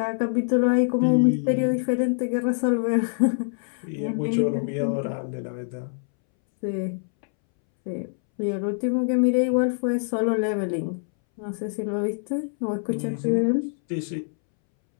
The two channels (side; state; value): right; silent; 62 dB below the other